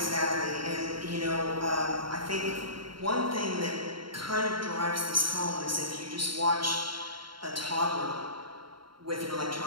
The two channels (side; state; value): left; late; 0.73 ms